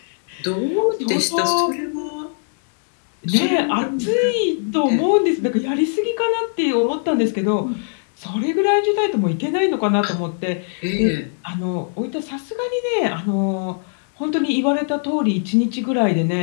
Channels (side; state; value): right; silent; 65 dB below the other